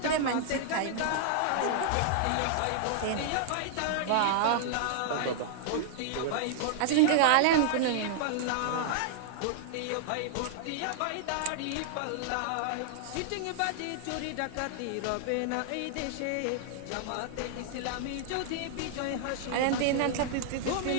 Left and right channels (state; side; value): different; both; correlation -0.01